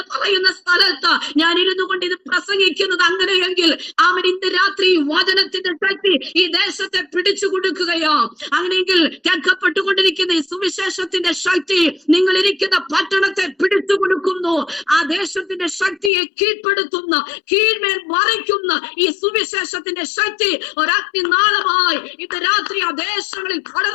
പറയുന്ന സ്ഥലത്ത് ഞാൻ ഇരുന്നു കൊണ്ട് ഇത് പ്രസംഗിക്കുന്നത് അങ്ങനെ എങ്കിൽ ഇന്ന് രാത്രി വചനത്തിന്റെ ശക്തി ഈ ദേശത്തെ പിടിച്ചു കൊടുക്കുകയോ. അങ്ങനെയെങ്കിൽ കേൾക്കപ്പെട്ടുകൊണ്ടിരിക്കുന്ന ഈ സുവിശേഷത്തിന്റെ ശക്തി നിങ്ങൾ ഇരിക്കുന്ന പട്ടണത്തെ പിടിച്ചു കൊടുക്കുന്നു. ആ ദേശത്തിന്റെ ശക്തിയെ കീഴ്പ്പെടുത്തുന്ന, കീഴ്മേൽ മറിക്കുന്ന ഈ സുവിശേഷത്തിന്റെ ശക്തി ഒരഗ്നി നാളമായി ഇന്ന് രാത്രി ആ ദേശങ്ങളിൽ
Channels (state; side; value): drops out; right; at 16.1 s